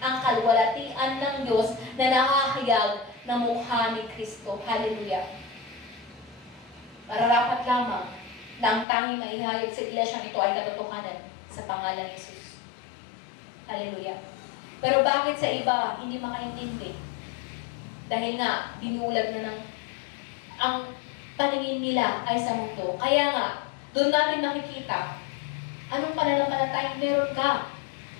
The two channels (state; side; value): drops out; right; at 8.8 s